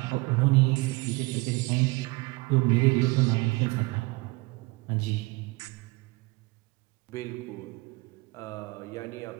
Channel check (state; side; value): quieter; left; 24.4 dB